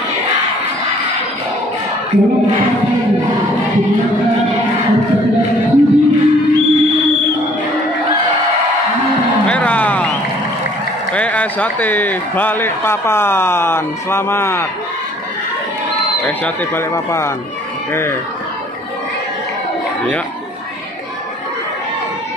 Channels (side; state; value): both; normal; correlation 0.57